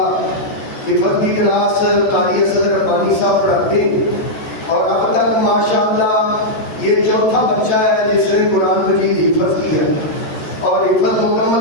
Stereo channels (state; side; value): late; right; 14 ms